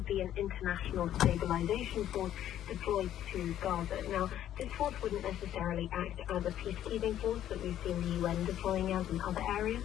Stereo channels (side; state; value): right; quieter; 11.5 dB